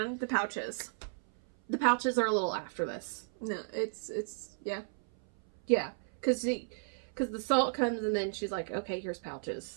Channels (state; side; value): silent; left; 55 dB below the other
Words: the pouches. The pouches are a little after this. No, it's yeah. Yeah, because the salt comes and then she's like, okay, here's